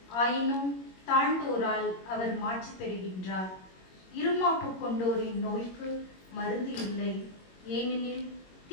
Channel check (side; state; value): right; late; 21 ms